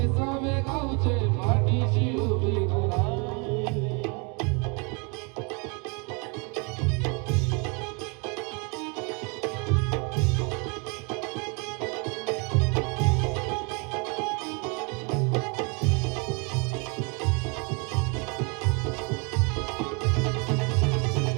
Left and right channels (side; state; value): left; quieter; 32.8 dB